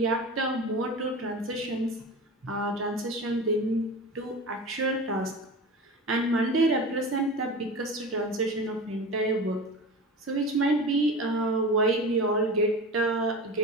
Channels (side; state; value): both; normal; correlation 0.31